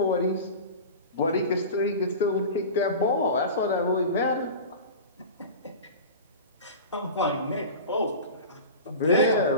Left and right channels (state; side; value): inverted; both; correlation -0.32